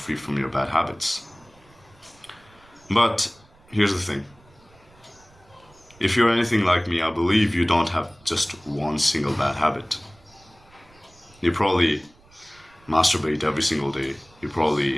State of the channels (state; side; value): noise; right; rumble, 28 dB below the sound